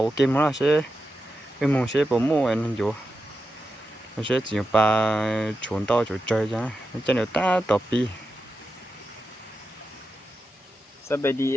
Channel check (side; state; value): both; normal; correlation 0.89